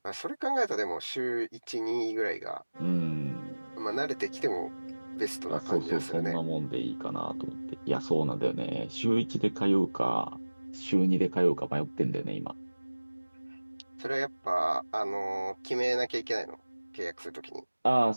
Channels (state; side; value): inverted; both; correlation -1.00